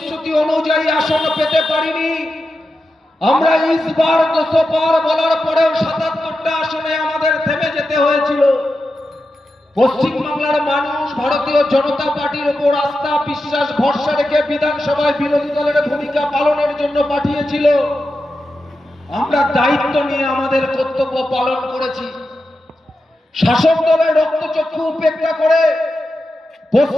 অনুযায়ী আসন পেতে পারিনি। আমরা ইসবার 200 পার বলার পরেও 77টা আসনে আমাদের থেমে যেতে হয়েছিল। পশ্চিমবাংলার মানুষ ভারতীয় জনতা পার্টির উপর আস্থা বিশ্বাস ভরসা রেখে বিধানসভায় বিরোধী দলের ভূমিকা পালনের জন্য পাঠিয়েছিল। আমরা দায়িত্ব নিয়ে আমাদের কর্তব্য পালন করেছি। শাসক দলের রক্তচক্ষু উপেক্ষা করে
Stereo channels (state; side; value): normal; both; correlation 0.90